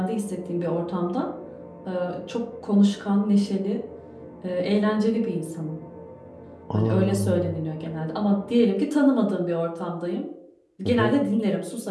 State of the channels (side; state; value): both; identical; correlation 1.00